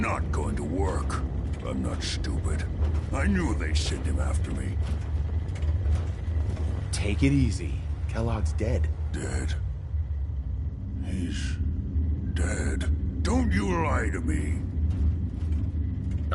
going to work. I'm not stupid. I knew they'd send him after me. Take it easy. Kellogg's dead. Dead? He's dead. Don't you lie to me.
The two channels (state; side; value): identical; both; correlation 1.00